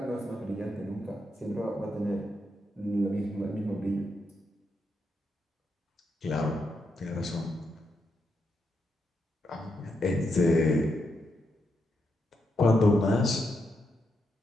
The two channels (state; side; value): normal; both; correlation 0.82